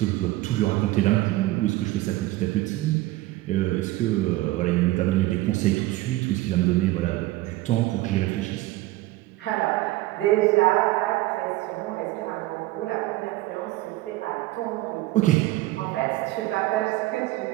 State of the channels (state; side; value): quieter; left; 17.7 dB